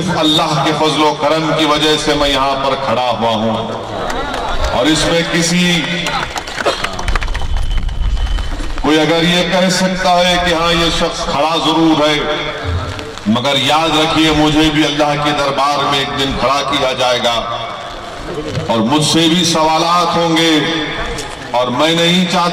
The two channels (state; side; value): identical; both; correlation 1.00